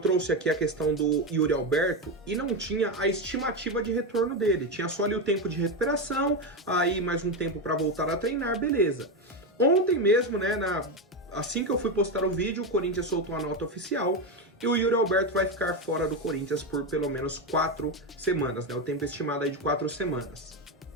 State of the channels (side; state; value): both; normal; correlation 0.12